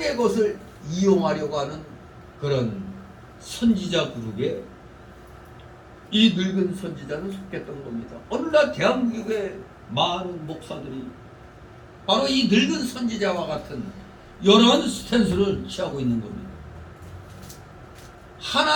것을 이용하려고 하는 그런 선지자 그룹에 이 늙은 선지자는 속했던 겁니다. 오늘날 대한민국의 많은 목사들이 바로 이 늙은 선지자와 같은 이런 스탠스를 취하고 있는 겁니다.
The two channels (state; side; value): identical; both; correlation 1.00